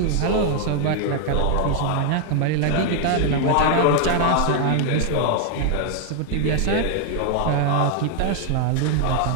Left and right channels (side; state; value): both; different; correlation 0.00